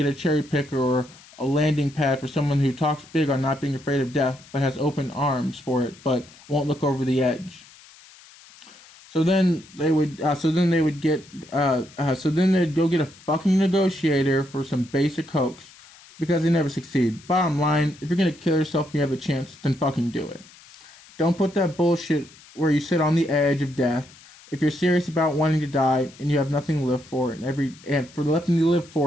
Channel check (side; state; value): left; noise; hiss, 23 dB below the sound